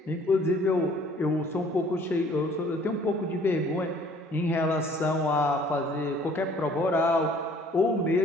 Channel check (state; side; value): normal; both; correlation 0.56